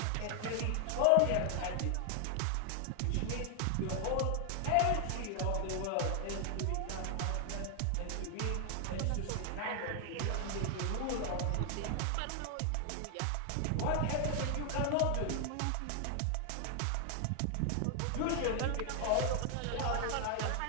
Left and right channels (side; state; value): both; different; correlation 0.00